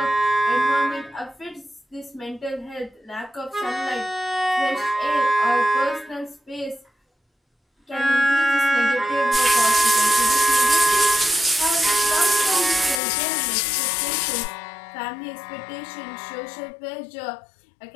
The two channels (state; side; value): drops out; right; at 13.0 s